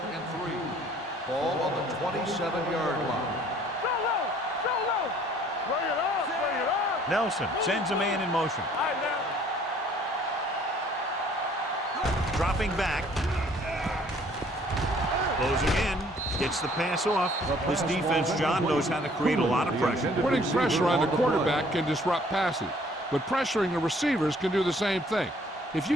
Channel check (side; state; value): both; normal; correlation 0.58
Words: 3. Ball on the 27-yard line. So low. Bring it up. Nelson sends a man in motion. All right, now. Dropping back. Closing in. Gets the pass off. This defense, John, knows how to create a lot of pressure. Putting pressure on the quarterback can disrupt passing, but pressuring the receivers can do the same thing. If